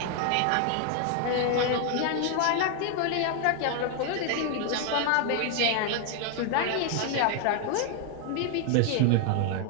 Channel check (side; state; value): both; different; correlation 0.00